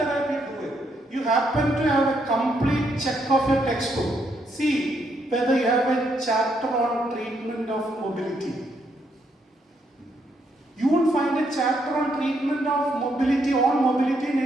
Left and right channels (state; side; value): normal; both; correlation 0.75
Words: do it. You happen to have a complete check of your textbook. See whether you have a chapter on treatment of mobility. You won't find a chapter on treatment of mobility in